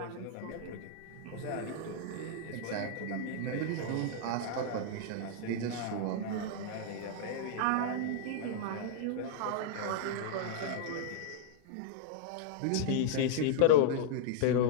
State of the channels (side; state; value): both; different; correlation -0.02